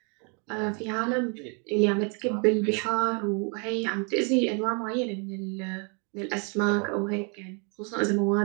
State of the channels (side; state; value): left; quieter; 36.9 dB